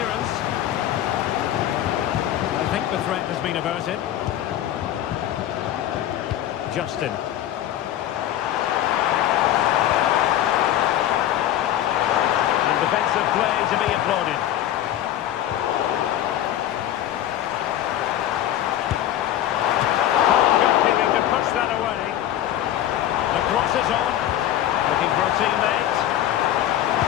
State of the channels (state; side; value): quieter; right; 12.2 dB